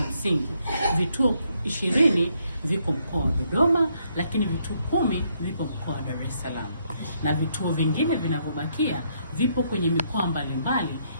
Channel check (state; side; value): inverted; both; correlation -0.73